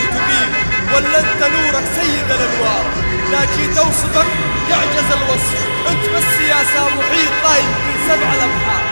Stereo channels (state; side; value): inverted; both; correlation -1.00